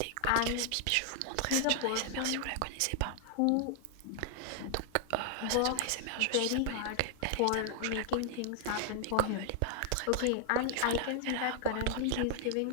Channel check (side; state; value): both; different; correlation 0.00